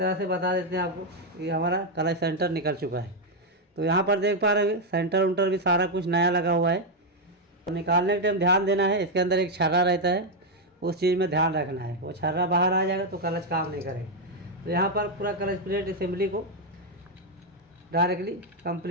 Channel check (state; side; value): normal; both; correlation 0.02